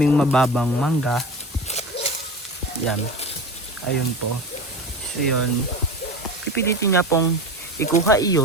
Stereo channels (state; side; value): normal; both; correlation 0.30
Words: mababang mangga. Yan. Ayun po. So yun. Pipilitin niya pong ikuha